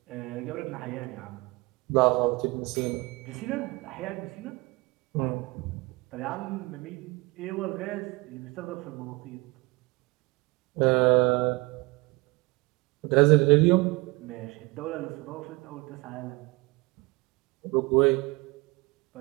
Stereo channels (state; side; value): quieter; left; 24.8 dB